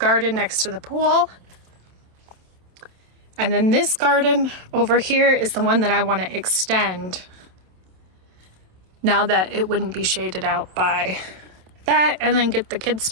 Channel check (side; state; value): left; late; 27 ms